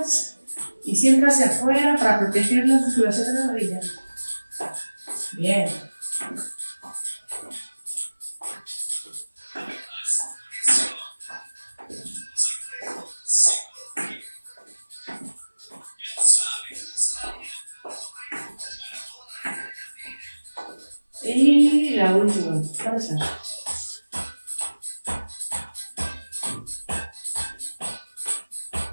y siempre hacia afuera para proteger la musculación de las rodillas. Bien. Y la última, cabeza.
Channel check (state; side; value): inverted; both; correlation -1.00